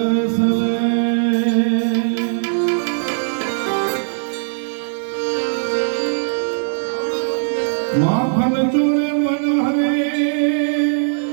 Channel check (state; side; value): silent; left; digital silence